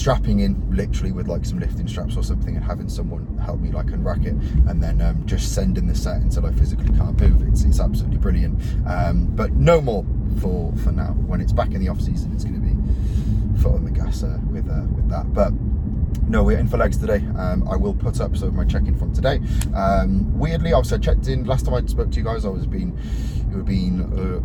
in literally with like some lifting straps or something, and having someone help me like unrack it, and then just sending the set until I physically can't move. It's absolutely brilliant. But no more for now. When it's back in the off season, it's going to be foot on the gas with that. But no, we're in for legs today. I will put up some of my check-in from today. Weirdly, obviously I checked in last time I spoke to you guys. It would have been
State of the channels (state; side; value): identical; both; correlation 1.00